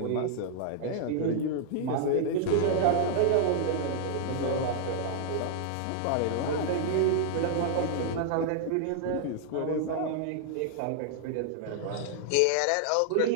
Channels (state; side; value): different; both; correlation -0.01